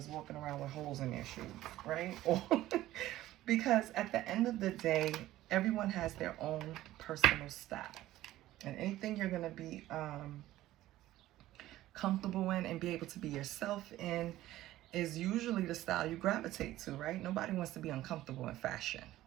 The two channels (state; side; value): quieter; left; 15.1 dB